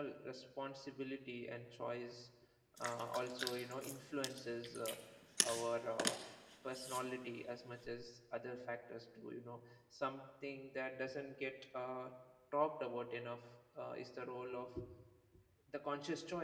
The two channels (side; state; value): both; identical; correlation 1.00